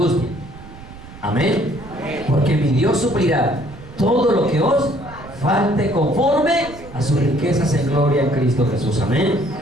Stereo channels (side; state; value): right; noise; rumble, 17 dB below the sound